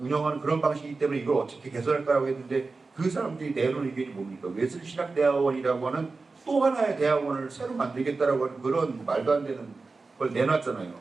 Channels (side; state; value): left; quieter; 3.9 dB